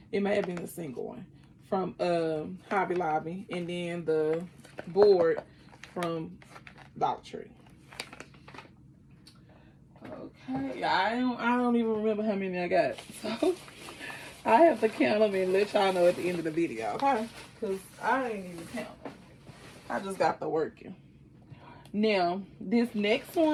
It may have been a single one from Hobby Lobby, and then the board from Dollar Tree. Okay, I don't even remember how many I got, so I have to count them and let y'all know at the end of the video, okay? Because I ain't even count them. I just got the working. Now, this next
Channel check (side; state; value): both; identical; correlation 1.00